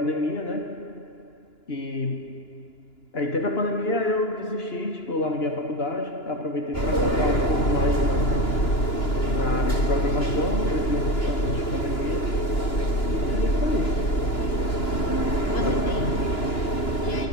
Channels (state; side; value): late; right; 2.9 ms